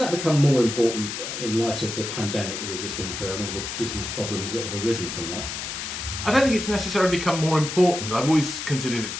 become more important in light of the pandemic that we've just been through and all the business problems that have arisen from that? I don't think it's necessarily become more important. I've always considered it to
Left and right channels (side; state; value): left; noise; hiss, 6 dB below the sound